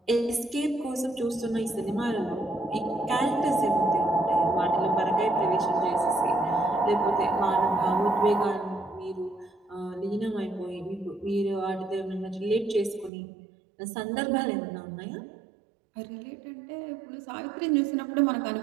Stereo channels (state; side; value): drops out; left; at 13.1 s